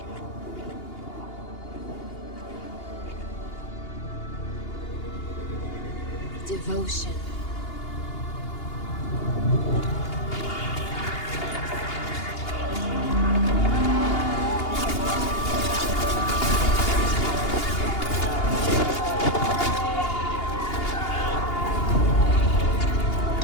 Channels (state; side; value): late; right; 2.8 ms